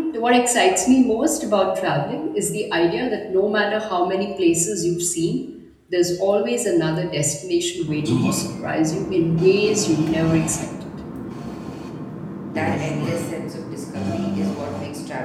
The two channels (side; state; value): both; identical; correlation 1.00